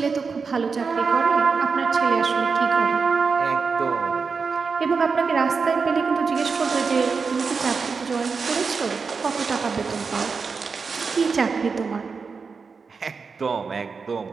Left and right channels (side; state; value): left; quieter; 5.1 dB